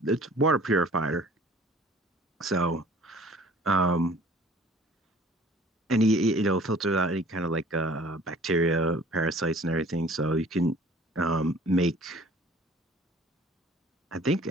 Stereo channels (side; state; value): both; normal; correlation 0.51